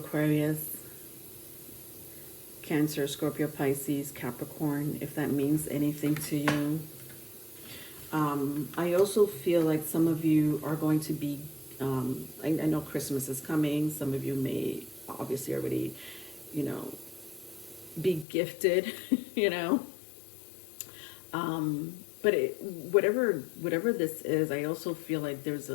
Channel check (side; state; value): right; drops out; at 18.2 s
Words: Cancer, Scorpio, Pisces, Capricorn, if that means anything to you. I also feel like some of you are going to be, I know Christmas is coming. Some of you may obviously already, you know, be gifted, you know. But whatever this is, I also feel like there's